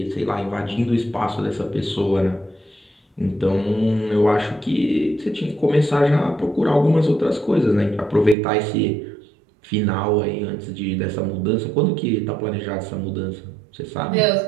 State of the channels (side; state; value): left; drops out; at 8.3 s